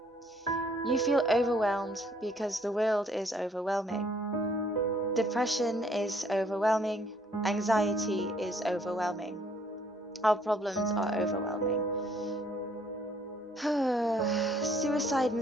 You feel overwhelmed because the world is overwhelming. Depression is overwhelming. Anxiety is overwhelming. Our problems are overwhelming. Suicide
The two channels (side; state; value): both; normal; correlation 0.63